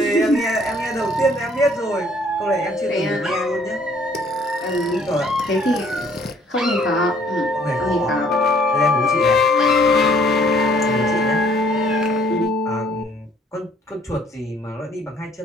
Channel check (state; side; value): normal; both; correlation 0.61